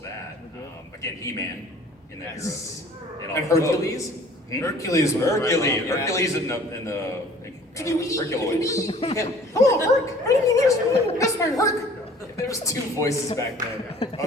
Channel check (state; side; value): normal; both; correlation 0.51